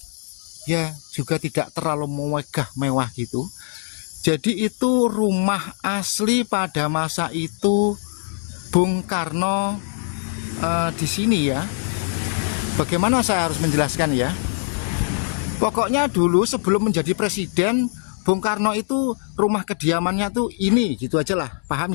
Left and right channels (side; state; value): right; silent; 64 dB below the other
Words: ya juga tidak terlalu mewah gitu. Jadi itu rumah asli pada masa itu Bung Karno di sini ya. Bagaimana saya harus menjelaskan ya? Pokoknya dulu sebelum menjadi presiden, Bung Karno itu rumah kediamannya tuh ini, gitu aja lah, paham